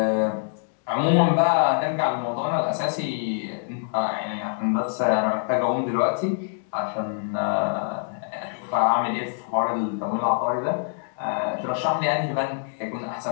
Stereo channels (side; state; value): right; silent; digital silence